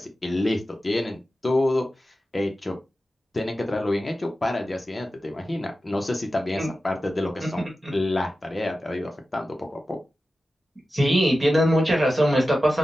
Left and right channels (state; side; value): normal; both; correlation 0.93